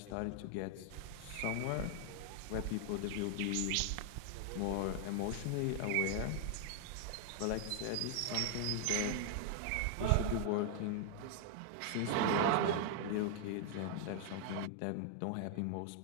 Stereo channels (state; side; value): different; both; correlation 0.00